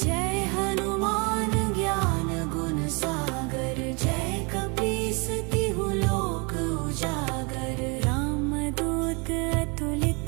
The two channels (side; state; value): left; quieter; 31.2 dB